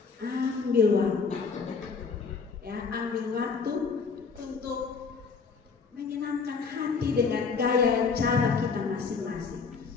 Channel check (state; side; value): quieter; right; 5.2 dB